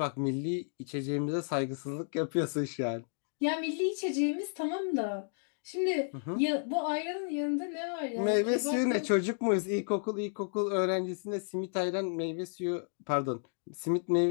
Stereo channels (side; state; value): right; silent; digital silence